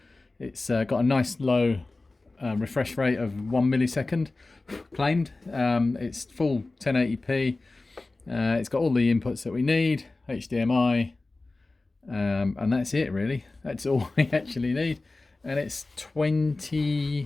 It's got a nice low refresh rate of 1 millisecond claimed. It's full 1080p. It's got all the inputs that we need, HDMI, and that's it really. That's all we actually need. And it's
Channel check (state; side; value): quieter; right; 3.2 dB